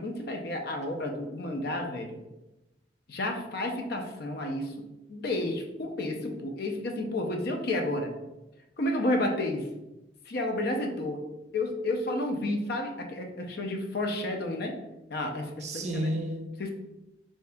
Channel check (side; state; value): both; normal; correlation 0.44